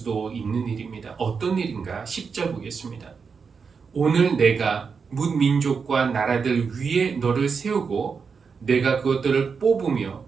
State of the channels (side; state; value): left; quieter; 5.6 dB